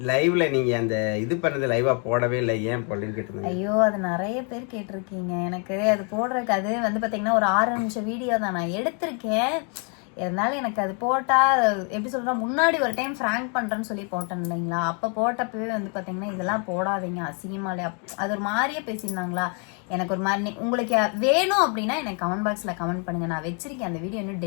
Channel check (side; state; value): right; quieter; 38.1 dB